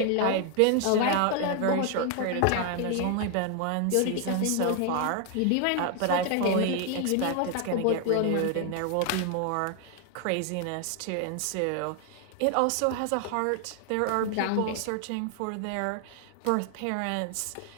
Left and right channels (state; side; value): different; both; correlation 0.00